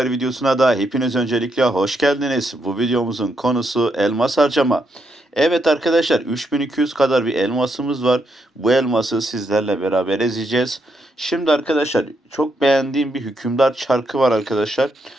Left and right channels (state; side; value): normal; both; correlation 0.79